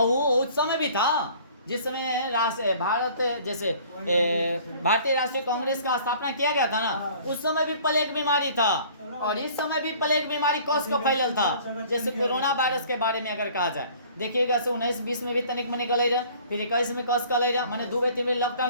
वो उस समय भी था जिस समय भारत जैसे भारतीय राष्ट्रीय कांग्रेस का स्थापना किया गया था ना, उस समय भी प्लेग बीमारी था। और इस समय भी प्लेग बीमारी कौश का फैलल था। जैसे कोरोना वायरस के बारे में अगर कहा जाए, देखिएगा 19-20 में भी तनिक मनिक गले रहे, फिर 21 में कौश का ले रहा, मैंने 2-3 में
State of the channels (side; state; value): both; inverted; correlation -0.51